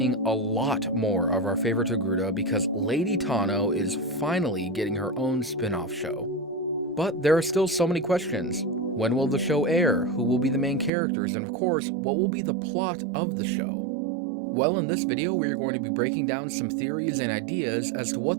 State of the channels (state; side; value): drops out; left; at 10.9 s